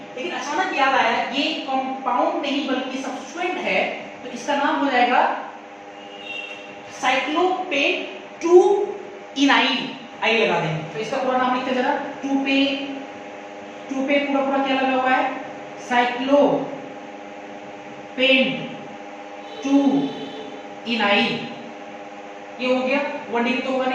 लेकिन अचानक याद आया ये कंपाउंड नहीं बल्कि सब्स्टिट्यूएंट है, तो इसका नाम हो जाएगा साइक्लोपेन 2 इनाइल, आई लगा देंगे। तो इसका पूरा नाम लिखते जरा, 2 पे पूरा क्या लगा हुआ है, साइक्लोपेन 2 इनाइल, ये हो गया। 1 डिग्री तो होगा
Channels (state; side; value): identical; both; correlation 1.00